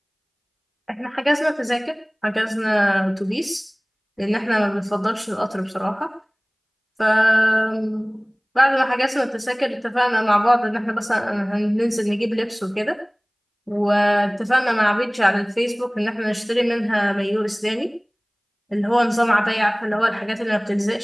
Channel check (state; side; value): identical; both; correlation 1.00